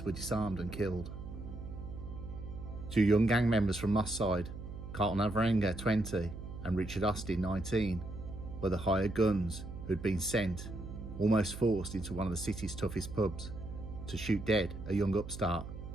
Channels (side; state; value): right; noise; hum, 10 dB below the sound